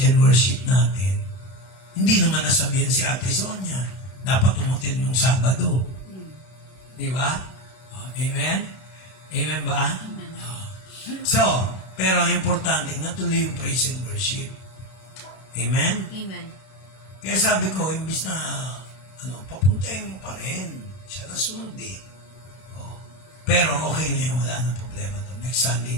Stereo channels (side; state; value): right; late; 32 ms